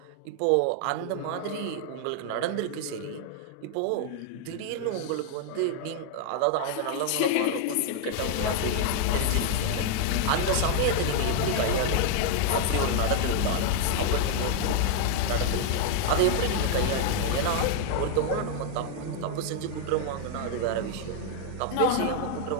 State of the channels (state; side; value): different; both; correlation 0.00